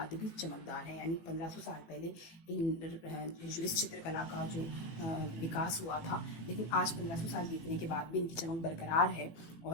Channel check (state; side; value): late; right; 18 ms